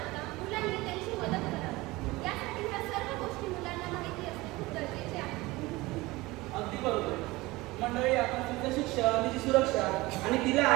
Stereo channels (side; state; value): left; quieter; 20.9 dB